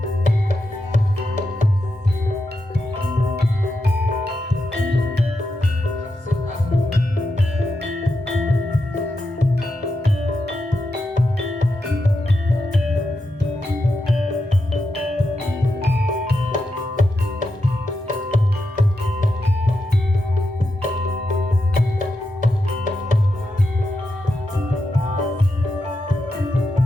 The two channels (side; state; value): both; normal; correlation 0.86